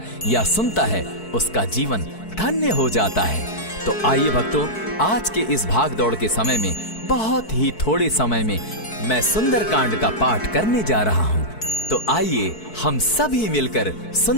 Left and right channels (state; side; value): late; right; 4.6 ms